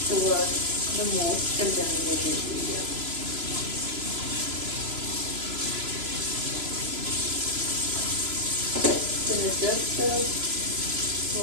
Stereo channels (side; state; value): left; late; 3.0 ms